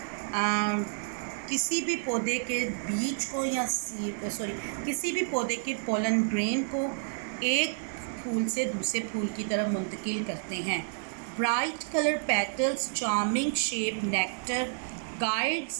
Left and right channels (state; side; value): silent; left; 58 dB below the other